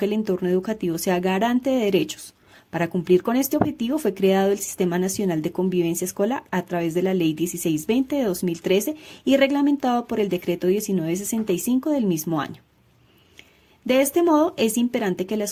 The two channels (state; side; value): identical; both; correlation 1.00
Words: el entorno educativo sea garante de derechos. Para cumplir con este objetivo fue creado el Sistema Nacional de Convivencia Escolar a través de la Ley 1620 de 2013 y reglamentado por el Decreto 1965 del mismo año. De este modo, es imperante que la